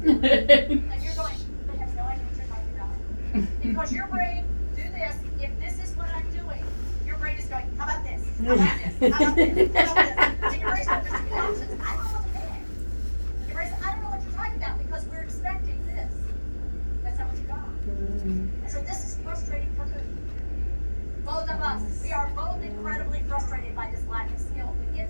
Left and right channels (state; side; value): inverted; both; correlation -1.00